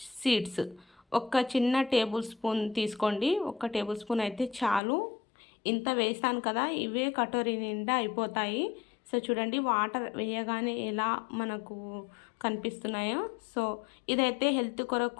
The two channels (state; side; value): drops out; right; at 4.8 s